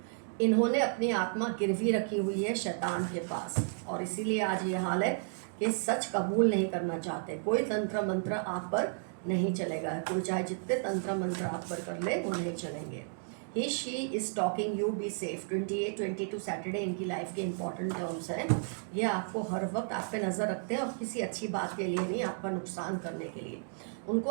इन्होंने अपनी आत्मा गिरवी रखी हुई है शैतान के पास, और इसीलिए आज ये हाल है कि सच कबूल नहीं करना चाहते। कोई तंत्र मंत्र आप पर नहीं चलेगा। कोई चाहे जितने तंत्र मंत्र आप पर कर ले वो नहीं चलेंगे। He she is talking you, be safe. 28, 22 Saturday इनकी लाइफ के इंपॉर्टेंट टर्म्स हैं। ये आपको हर वक्त आप पे नज़र रखते हैं और किसी अच्छी बात के लिए नहीं, आपका नुकसान करने के लिए। उनको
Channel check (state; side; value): silent; left; digital silence